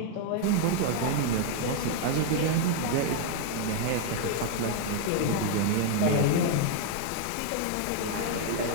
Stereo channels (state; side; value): different; both; correlation 0.00